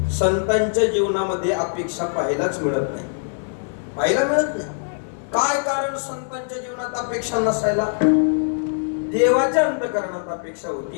संतांच्या जीवनामध्ये अपेक्षा पाहायलाच मिळत नाही, पाहायला मिळत नाही. काय कारण संतांच्या जीवनात अपेक्षा नसायला? देवाच्या अंतकरणात अपेक्षा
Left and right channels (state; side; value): silent; right; digital silence